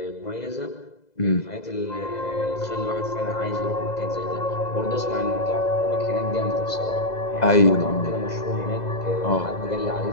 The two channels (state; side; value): late; right; 2.0 ms